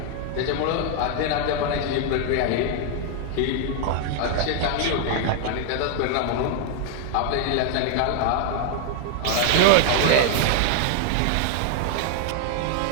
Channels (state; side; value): different; both; correlation 0.00